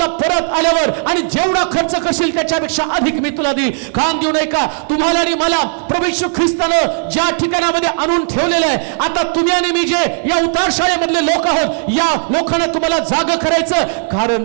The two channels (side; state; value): left; silent; 58 dB below the other